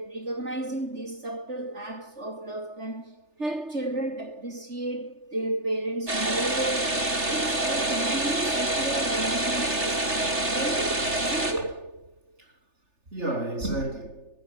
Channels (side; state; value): left; late; 3.4 ms